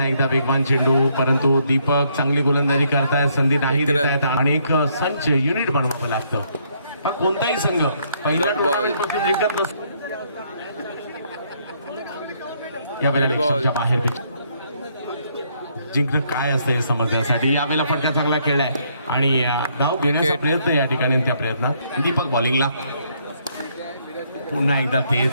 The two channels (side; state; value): both; inverted; correlation -0.70